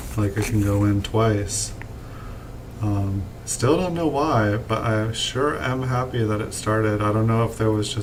like it can go in twice. Still don't know why, but I sure am happy that it started. I don't know if there was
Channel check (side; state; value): both; identical; correlation 1.00